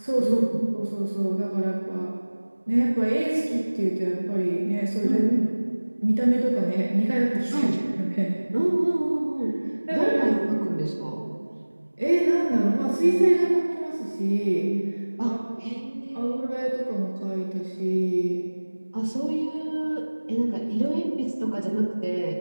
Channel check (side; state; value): both; inverted; correlation -1.00